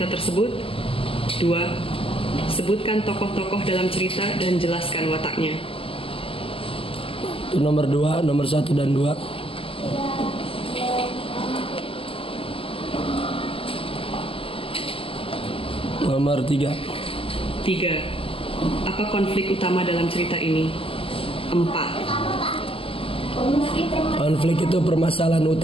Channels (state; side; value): late; right; 0.26 ms